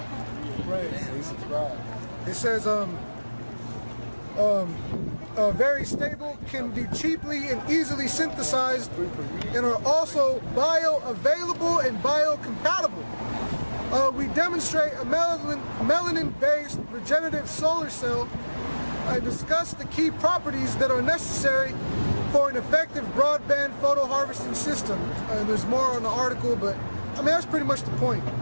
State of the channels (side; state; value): both; inverted; correlation -1.00